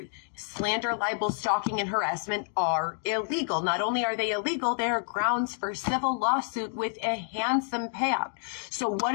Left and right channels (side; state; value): right; silent; 59 dB below the other